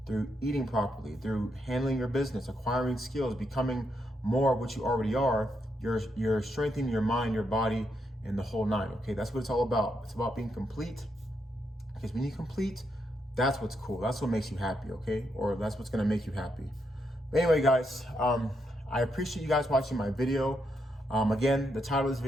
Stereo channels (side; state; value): both; normal; correlation 0.80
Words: through eating properly, through handling your business, acquiring skills, becoming more of what you already are, you're strengthening your mind, your body, and the whole nine. Okay, that's what it's all about. It's about being complete, because when you complete, that's what's cool. That's what makes you happy. Okay, or that's what's gonna make you happy. But anyway, guys, I appreciate you guys watching my video. Again, the title of this